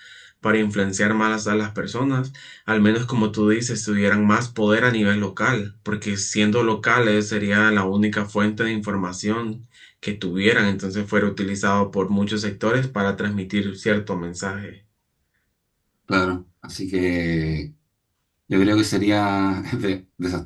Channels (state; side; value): identical; both; correlation 1.00